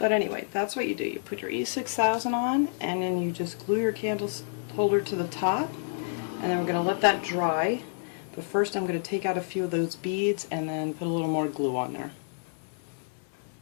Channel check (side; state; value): right; silent; 59 dB below the other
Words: anyway, that's what you do. You put your E6000 on, and then you just glue your candle holder to the top, and then we're going to let that dry. But first I'm going to take out a few of those beads and then put a little more glue on there.